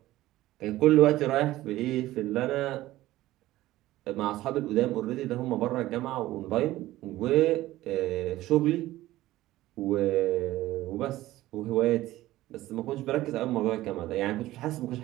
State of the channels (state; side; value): quieter; left; 16.1 dB